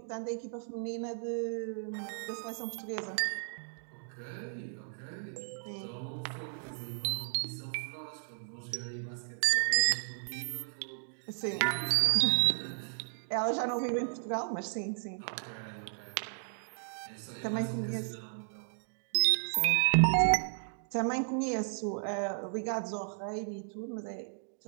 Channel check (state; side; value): silent; left; digital silence